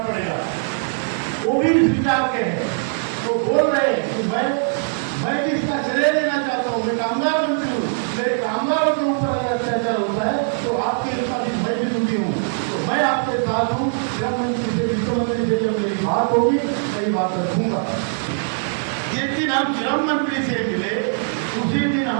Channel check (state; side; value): silent; left; digital silence